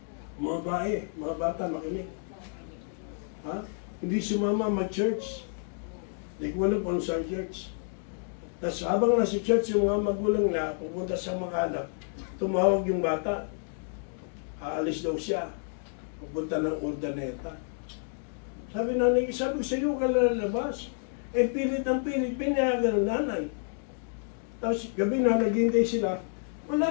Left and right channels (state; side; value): silent; right; 58 dB below the other